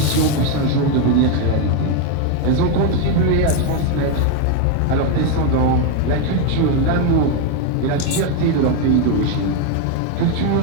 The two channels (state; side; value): different; both; correlation 0.02